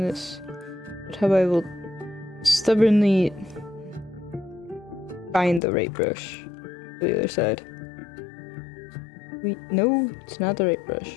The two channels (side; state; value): right; drops out; at 5.6 s